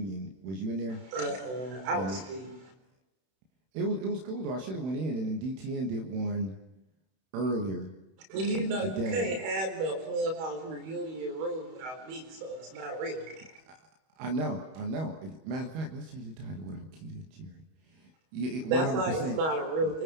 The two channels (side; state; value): left; late; 31 ms